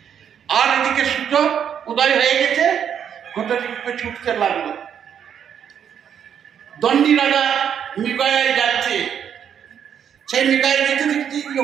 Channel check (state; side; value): quieter; left; 8.5 dB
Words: আর এদিকে সূর্য উদয় হয়ে গেছে, ঘটকি ছুটতে লাগলো। দণ্ডী রাজা মৃগয়ায় যাচ্ছে, সেই মৃগয়ায় যেতে দেখছি